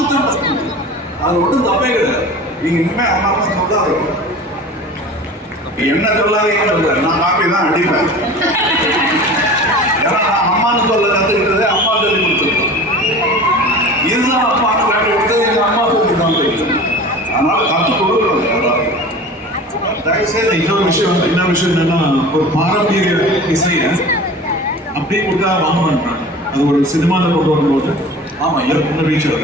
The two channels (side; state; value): both; normal; correlation 0.38